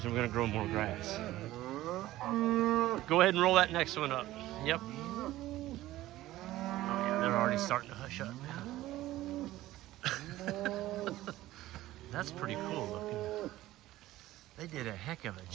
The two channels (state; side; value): quieter; left; 15.8 dB